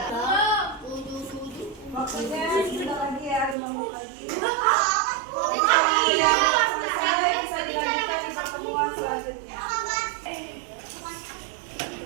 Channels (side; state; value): left; drops out; at 3.6 s